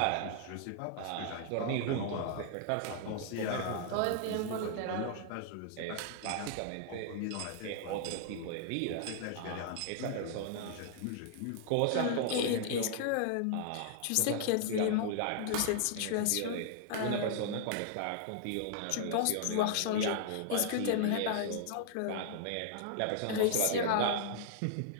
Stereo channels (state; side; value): different; both; correlation -0.01